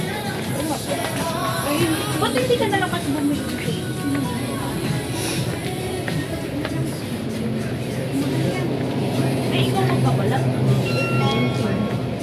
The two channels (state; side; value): identical; both; correlation 1.00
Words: Ba't hindi ka nalang kasi bumili? Ay, ikaw magpabalat.